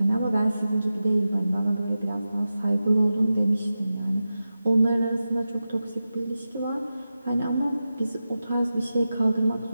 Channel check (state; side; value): inverted; both; correlation -0.93